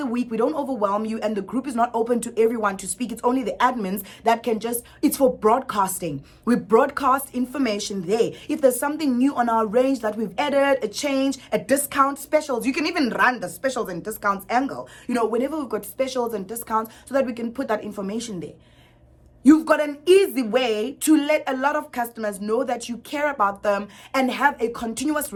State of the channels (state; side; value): identical; both; correlation 1.00